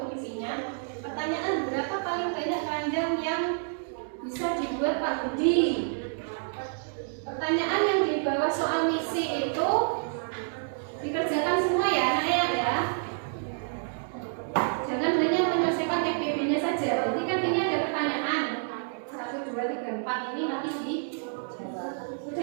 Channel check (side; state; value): left; silent; digital silence